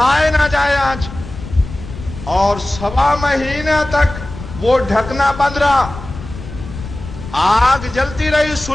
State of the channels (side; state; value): left; noise; rumble, 12 dB below the sound